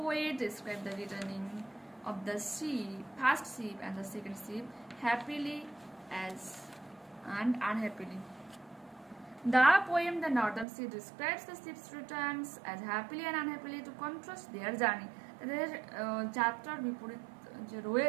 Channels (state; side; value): drops out; left; at 10.7 s